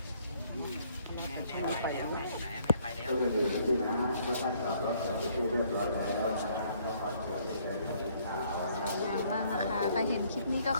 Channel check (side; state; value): both; inverted; correlation -0.64